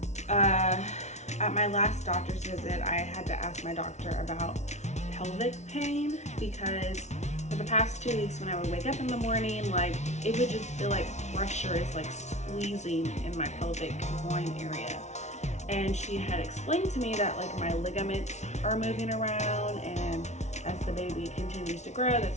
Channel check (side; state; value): right; late; 0.32 ms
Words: at my last doctor's visit, I had to ask my doctor about pelvic pain, because for the past 2 weeks when I would wake up in the morning, like it would just feel like pressure is like squeezing in my pelvic groin area. And she had explained to me that like my ligaments are moving around, and as the baby continues to grow,